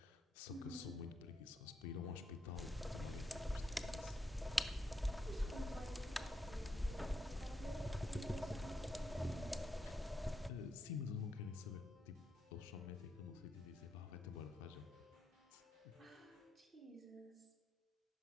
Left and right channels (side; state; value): both; normal; correlation 0.83